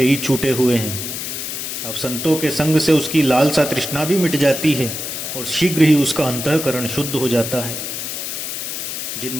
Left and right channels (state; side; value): noise; left; hiss, 5 dB below the sound